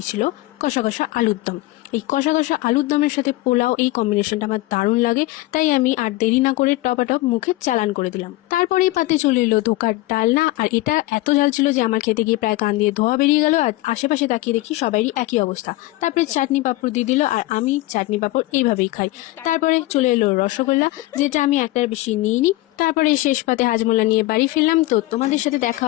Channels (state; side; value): quieter; right; 18.5 dB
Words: কষা কষা আলুর দম। এই কষা কষা আলুর দমের সাথে পোলাও, এই কম্বিনেশনটা আমার দারুণ লাগে, তাই আমি আর দেরি না করে টপাটপ মুখে চালান করে দিলাম। তারপরে পাতে চলে এলো ধোকার ডালনা, আর এটা এত ঝাল ছিল যে আমার খেতে গিয়ে প্রায় কান দিয়ে ধোয়া বেরিয়ে গেল। আর আশেপাশে তাকিয়ে দেখি সবারই একই অবস্থা। তারপরে চাটনি পাঁপড় দিয়ে দিল, আর আমি চাটনি পাঁপড় এইভাবেই খাই। তারপরে চলে এলো রসগোল্লা, যেটা আমি একটার বেশি নিইনি। তারপরে শেষ পাতে হাজমোলা নিয়ে বাড়ি ফিরলাম। তো তোমাদের সাথে দেখা